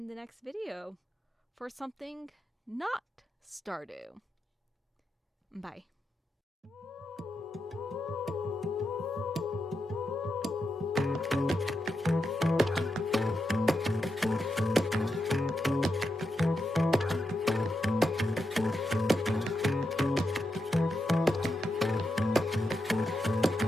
the next video for something not Stardew. Bye.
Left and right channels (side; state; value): both; normal; correlation 0.86